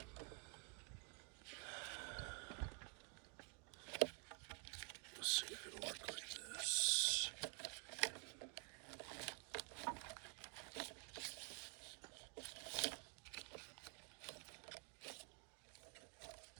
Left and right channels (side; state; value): left; quieter; 36.4 dB